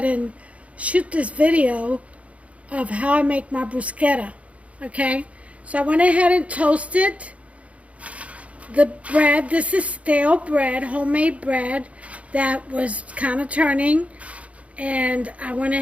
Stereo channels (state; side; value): late; left; 0.065 ms